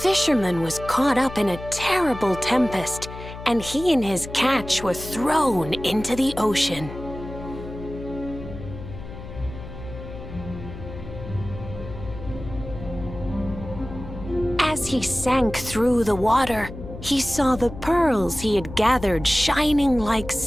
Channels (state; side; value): noise; left; hum, 12 dB below the sound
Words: was caught up in a terrible tempest, and he and his catch were thrown into the ocean. As he sank through the water, he saw the pearls he had gathered shining like